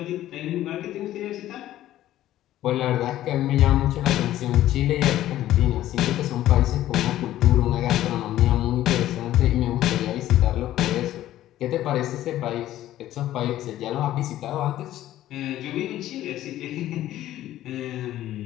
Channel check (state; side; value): quieter; right; 13.6 dB